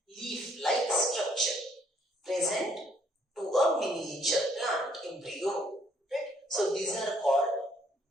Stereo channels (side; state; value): both; normal; correlation 0.66